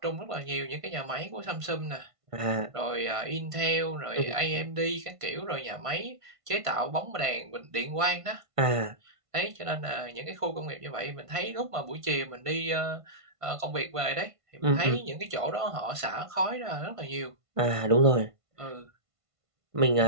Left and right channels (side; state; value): left; late; 1.5 ms